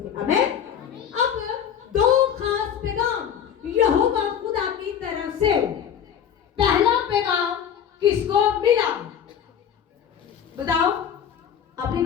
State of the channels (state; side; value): quieter; right; 8.7 dB